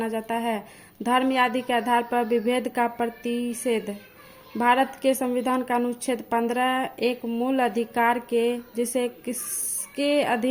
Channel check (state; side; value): identical; both; correlation 1.00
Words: जाता है। धर्म आदि के आधार पर विभेद का प्रतिषेध। भारत के संविधान का अनुच्छेद 15 एक मूल अधिकार के जिसे किसके